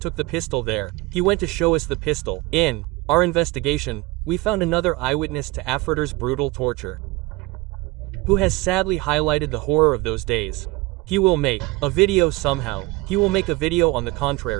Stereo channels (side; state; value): left; quieter; 20.5 dB